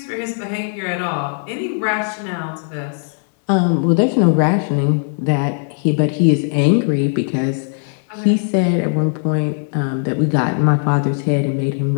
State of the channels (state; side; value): silent; right; digital silence